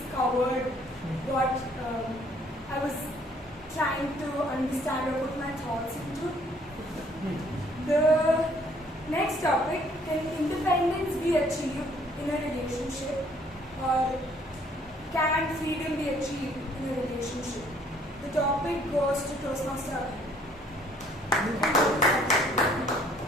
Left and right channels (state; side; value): normal; both; correlation 0.61